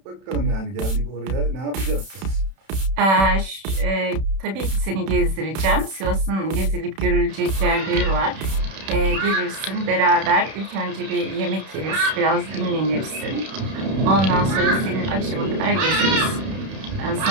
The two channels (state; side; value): late; left; 31 ms